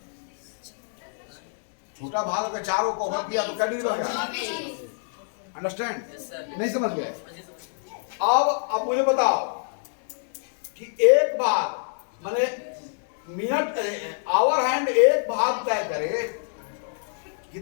छोटा भाग अगर 4 को कवर किया तो कै डिग्री बनेगा? अंडरस्टैंड? Yes, sir. नहीं समझ गए? अब मुझे बताओ कि एक भाग माने मिनट आवर हैंड एक भाग तय करे,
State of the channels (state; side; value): silent; right; digital silence